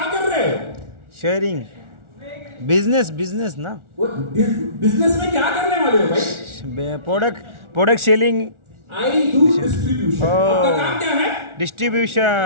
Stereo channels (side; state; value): left; late; 1.4 ms